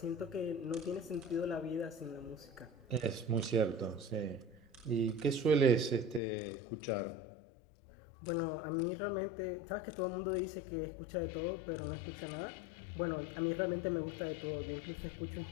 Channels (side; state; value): right; drops out; at 6.2 s